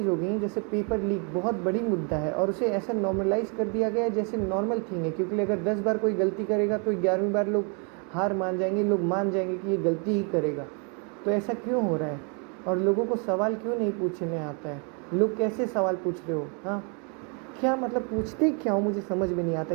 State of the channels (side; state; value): left; quieter; 37.2 dB